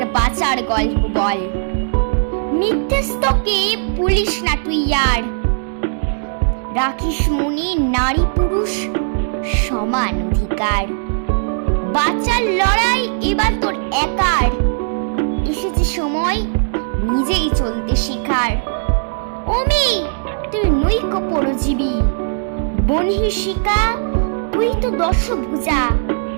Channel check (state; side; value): silent; left; digital silence